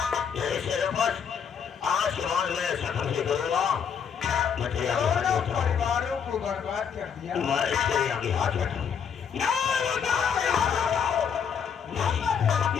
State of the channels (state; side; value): quieter; right; 7.2 dB